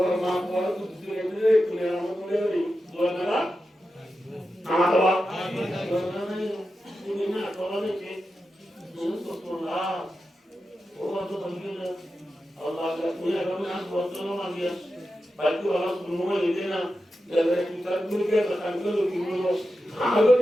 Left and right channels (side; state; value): both; normal; correlation 0.91